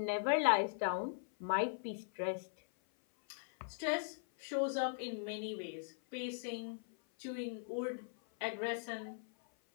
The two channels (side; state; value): right; silent; 51 dB below the other